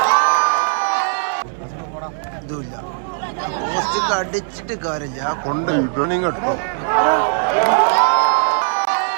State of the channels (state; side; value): silent; left; digital silence